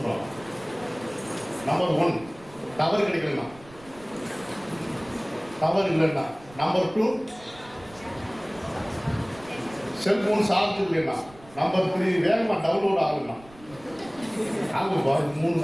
நம்பர் 1 டவர் கிடைக்கலன்னா, டவர் இல்லைன்னா. நம்பர் 2 செல்போன் சார்ஜ் இல்லைன்னா. நம்பர் 3 வேகமாக டவுன்லோட் ஆகுதுன்னா. ஆகும் 3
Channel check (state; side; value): noise; right; rumble, 22 dB below the sound